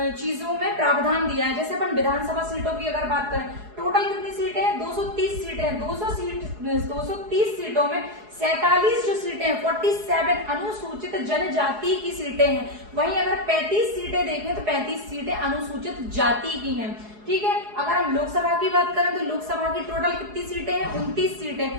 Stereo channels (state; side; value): late; left; 4.8 ms